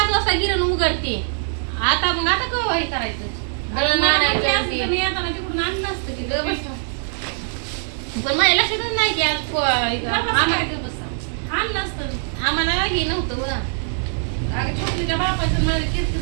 वाजता गिरण उघडते. आता मग आता केव्हा हे करायचं दळण आणायचं ते. मी येताना तिकडून आणलं असतं की गं बस. पण माझ्या लक्षातच नाही की आज आणलं असतं. आम्हाला हे नव्हतं बघा. अगं छोटलीच्या बापाचं मला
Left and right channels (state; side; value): silent; left; digital silence